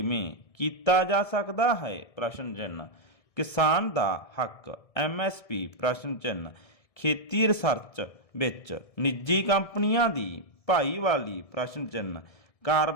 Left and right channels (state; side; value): late; right; 1.7 ms